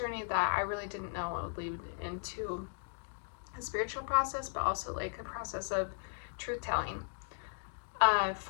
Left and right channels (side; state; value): right; silent; digital silence